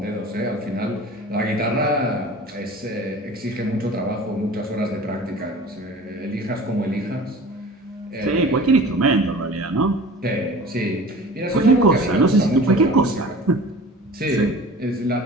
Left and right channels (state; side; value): normal; both; correlation 0.41